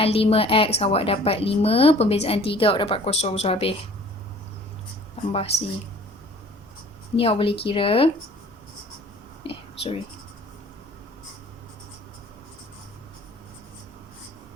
5X awak dapat 5, pembezaan 3 awak dapat kosong. So habis tambah C. Ni awak boleh kira. Sorry.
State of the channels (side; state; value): both; normal; correlation 0.51